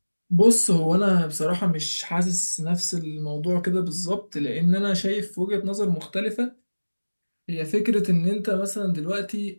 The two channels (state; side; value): inverted; both; correlation -1.00